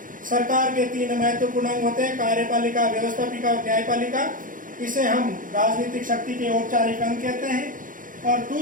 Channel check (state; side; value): late; left; 0.39 ms